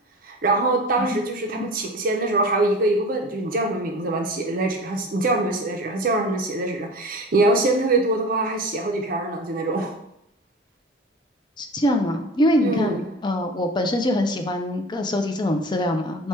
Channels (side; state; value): both; normal; correlation 0.37